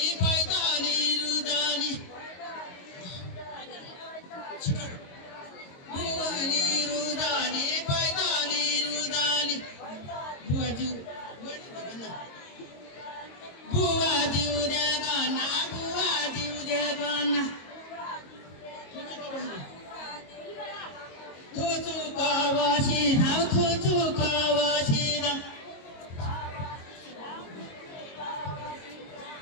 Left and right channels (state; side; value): late; right; 22 ms